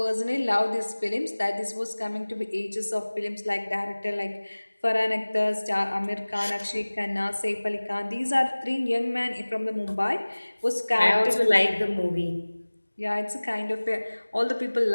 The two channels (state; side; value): inverted; both; correlation -1.00